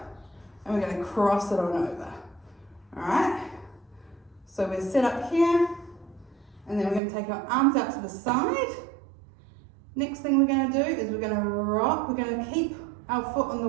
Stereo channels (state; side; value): drops out; left; at 7.0 s